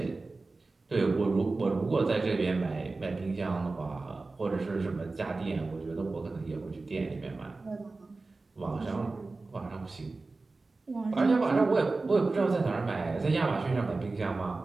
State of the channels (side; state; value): left; quieter; 3.6 dB